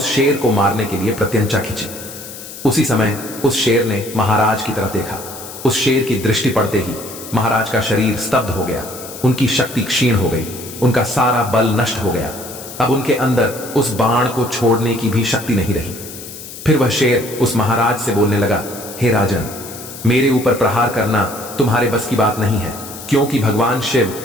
शेर को मारने के लिए प्रत्यंचा खींची। उसी समय उस शेर ने महाराज की तरफ देखा। उस शेर की दृष्टि पड़ते ही महाराज का शरीर स्तब्ध हो गया, उनकी शक्ति क्षीण हो गई, उनका सारा बल नष्ट हो गया। अब उनके अंदर उस बाण को छोड़ने की भी शक्ति नहीं रही। फिर वह शेर उस महाराज से बोलने लगा, हे राजन, मेरे ऊपर प्रहार करना तुम्हारे बस की बात नहीं है, क्योंकि भगवान शिव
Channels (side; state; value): left; noise; hiss, 13 dB below the sound